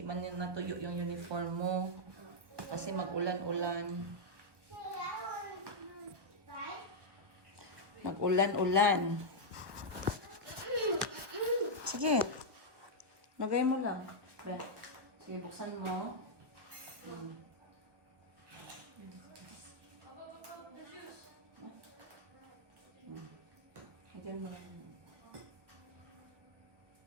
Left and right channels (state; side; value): late; left; 1.2 ms